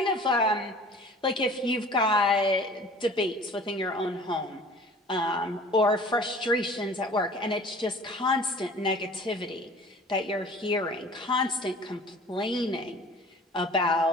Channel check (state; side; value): normal; both; correlation 0.46